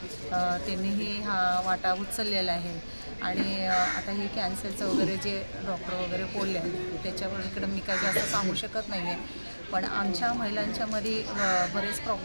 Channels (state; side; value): inverted; both; correlation -1.00